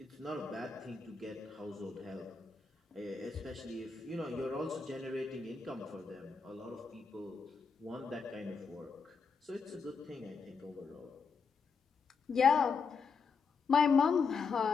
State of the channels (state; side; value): quieter; right; 5.2 dB